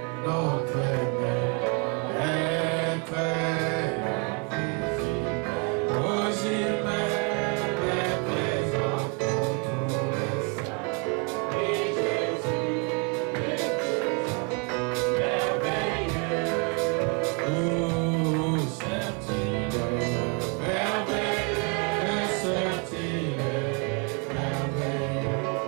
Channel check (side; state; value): left; quieter; 34.8 dB